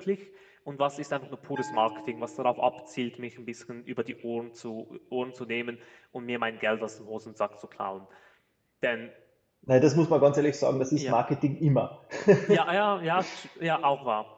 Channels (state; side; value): identical; both; correlation 1.00